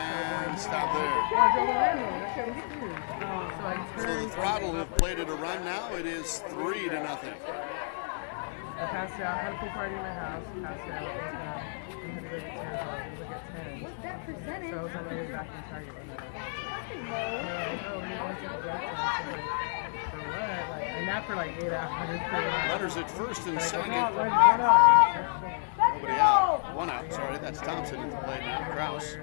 stop there. So the Throttle have played it a run now. It is 3-0. I passed out. I had a pool party in my house. Passed out. What's that percentage? So I was on my way back in Target. And that for like 8 hours. Runners at first and second. Nobody out. 1 out. Sorry, that's Thompson at the plate now. Kraus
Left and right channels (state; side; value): silent; right; 57 dB below the other